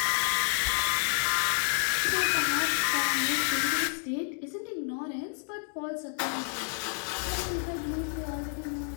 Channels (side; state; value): right; silent; 58 dB below the other